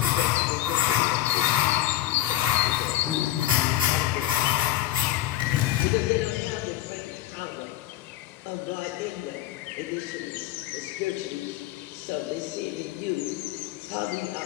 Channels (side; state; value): right; quieter; 13.7 dB